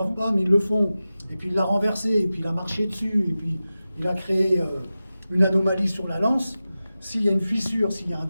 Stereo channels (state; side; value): inverted; both; correlation -0.94